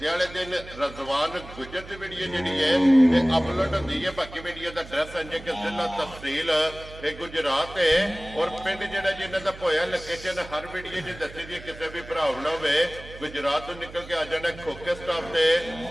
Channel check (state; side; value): noise; right; hum, 16 dB below the sound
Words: वाले दिन रजवान गुजर की वीडियो जी है ये अपलोड होती है। बाकी वीडियो का एड्रैस है कि जिला तहसील ये गुजरात है और पिंड जोड़ा जिन्हों का पोया लोकेशन हर वीडियो जी दसी दी किसी भी भरा गुजरात तो निकल के आ जाना खोखे स्टाफ से